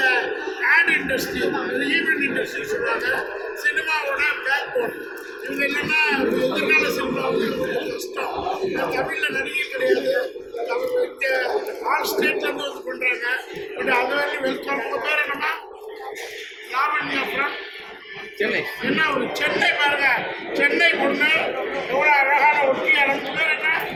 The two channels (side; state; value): both; identical; correlation 1.00